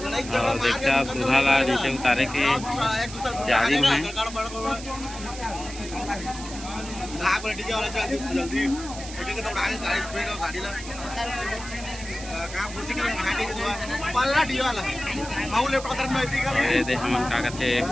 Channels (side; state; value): right; noise; hiss, 12 dB below the sound